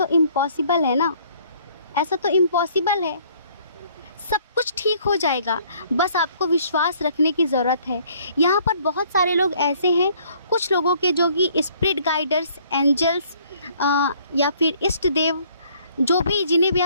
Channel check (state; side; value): inverted; both; correlation -0.60